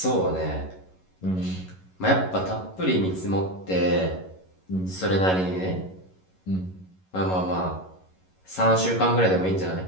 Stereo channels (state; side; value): late; right; 11 ms